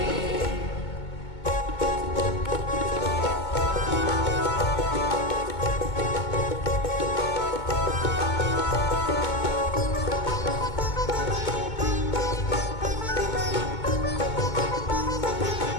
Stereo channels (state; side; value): late; right; 2.2 ms